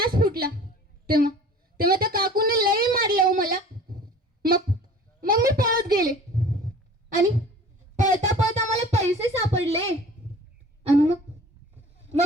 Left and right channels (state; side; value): normal; both; correlation 0.44